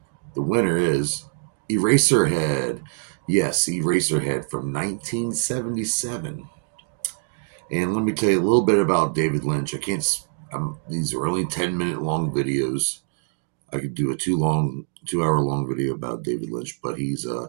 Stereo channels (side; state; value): left; silent; digital silence